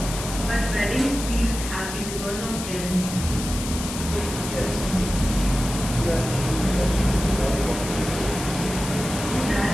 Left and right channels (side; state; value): left; noise; hiss, 8 dB below the sound